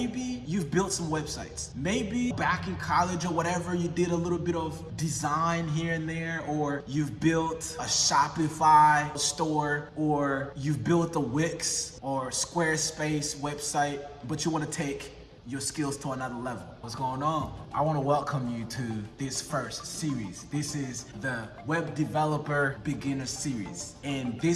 you've built some websites. Maybe back in college or whatever, you did a little bit of design here and there, or you've built a Shopify store, or you've built a Wix or Squarespace website, but you want to take your skills to another level. What's going on? I want to welcome you to this first series. This is the Web Developer Beginner Series, and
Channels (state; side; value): identical; both; correlation 1.00